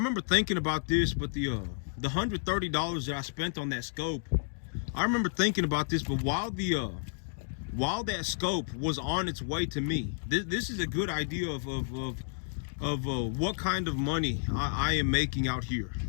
thinking about this, but the $130 that I spent on that scope, I remember thinking about this, but while that scope was on its way to me, this is a good idea of what kind of money I am making out here.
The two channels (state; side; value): silent; right; digital silence